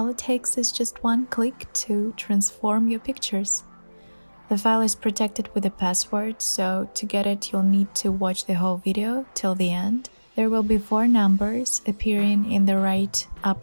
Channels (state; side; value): inverted; both; correlation -1.00